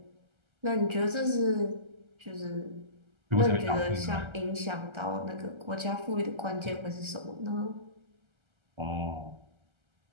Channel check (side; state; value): left; late; 1.3 ms